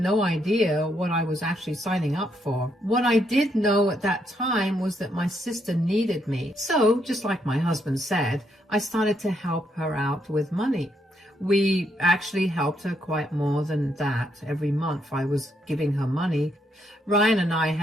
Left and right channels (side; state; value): both; normal; correlation 0.76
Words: idea what I was actually signing up for. What I did know at that time was that my sister needed me. So, just like my husband said, I started to help her out with money. We actually helped her quite more than that. Every month I was giving her money. Ryan and I